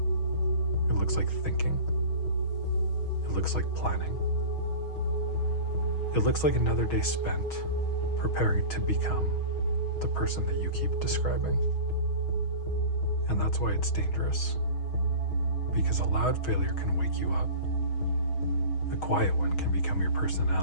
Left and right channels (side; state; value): right; late; 6.3 ms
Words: It looks like thinking. It looks like planning. It looks like another day spent preparing to become the person that you keep describing. And that's why it's dangerous. Because a loud failure can wake you up. A quiet one can become your